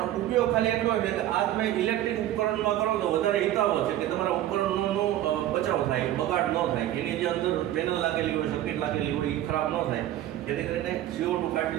ઉપયોગ ખાલી એટલો છે કે આ તમે ઇલેક્ટ્રિક ઉપકરણમાં કરો તો વધારે હિતાવહ છે કે તમારા ઉપકરણનો બચાવ થાય, બગાડ ન થાય. એની જે અંદર પેનલ લાગેલી હોય, સર્કિટ લાગેલી હોય એ ખરાબ ન થાય. જેથી કરીને CO2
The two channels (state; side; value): quieter; left; 13.2 dB